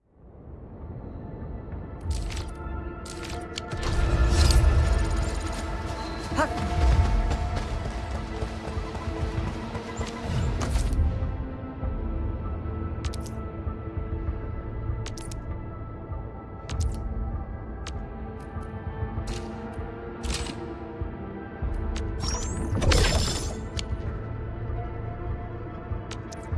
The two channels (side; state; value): both; identical; correlation 1.00